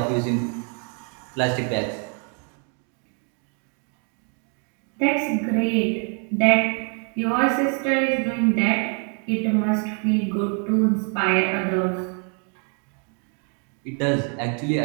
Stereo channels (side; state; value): left; quieter; 39.5 dB